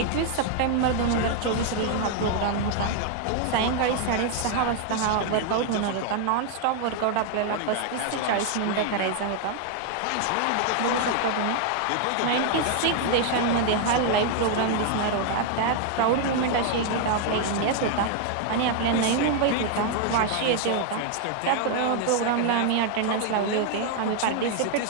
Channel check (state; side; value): different; both; correlation 0.00